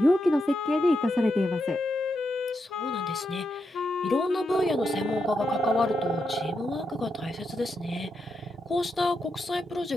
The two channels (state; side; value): normal; both; correlation 0.84